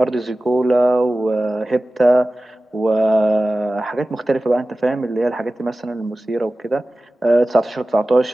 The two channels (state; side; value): normal; both; correlation 0.96